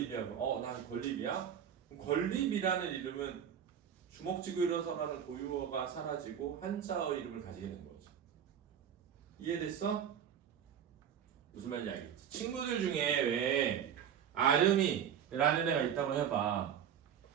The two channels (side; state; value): left; quieter; 8.7 dB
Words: 난 권립이야? 권립이라는 이름은 주먹 쥐고 일어서라는 고유어가 사라지고 한자어 이름을 가지게 된 거지. 이해됐어? 무슨 말인지 알겠지? 친구들 중에 왜 아름이라는 애가 있다고 해봐.